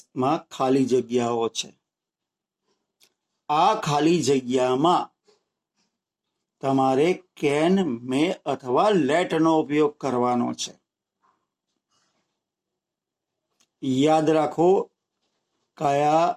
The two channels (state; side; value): identical; both; correlation 1.00